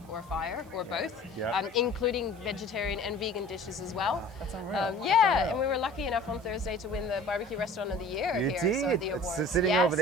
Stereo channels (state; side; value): noise; right; hiss, 28 dB below the sound